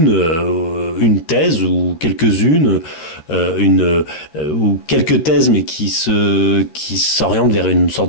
thèse ou quelques-unes, ou quelques thèses, mais qui s'orientent vers une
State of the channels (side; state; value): right; late; 13 ms